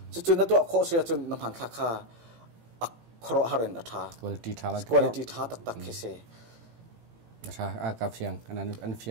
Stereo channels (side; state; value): left; late; 18 ms